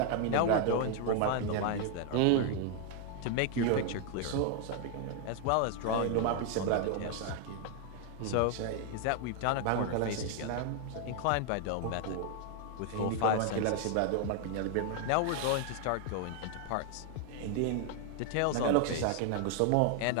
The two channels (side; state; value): both; different; correlation 0.00